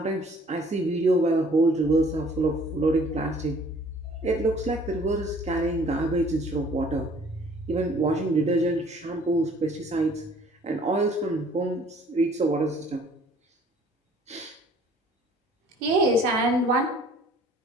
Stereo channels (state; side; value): normal; both; correlation 0.56